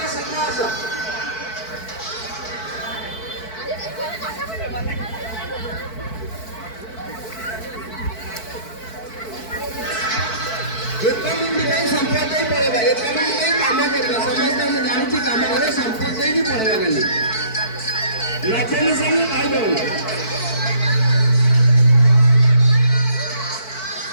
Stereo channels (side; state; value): right; late; 4.5 ms